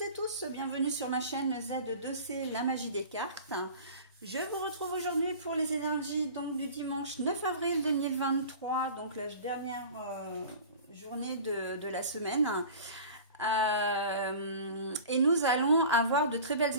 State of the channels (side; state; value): both; inverted; correlation -0.40